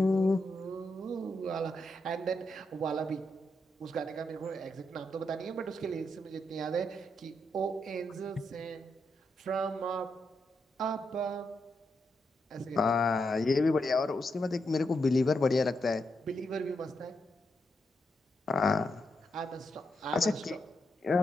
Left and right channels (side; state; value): both; normal; correlation 0.83